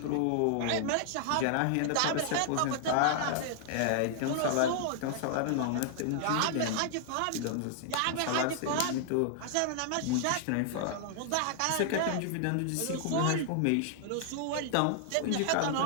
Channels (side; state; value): both; different; correlation -0.01